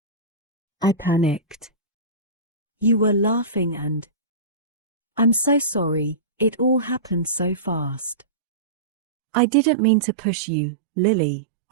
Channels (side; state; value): left; drops out; at 8.2 s